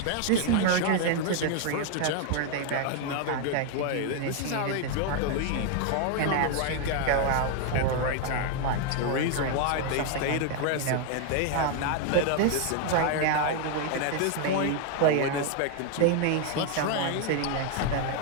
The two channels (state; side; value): different; both; correlation 0.00